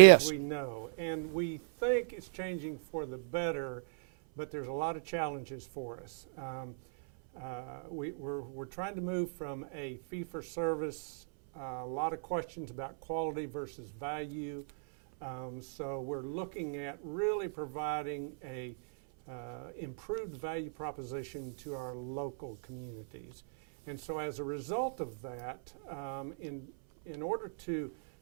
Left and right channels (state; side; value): silent; left; 54 dB below the other